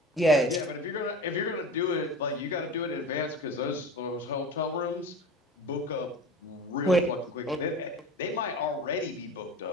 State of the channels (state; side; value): normal; both; correlation 0.35